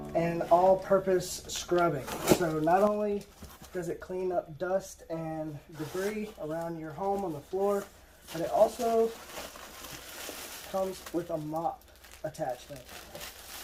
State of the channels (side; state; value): both; identical; correlation 1.00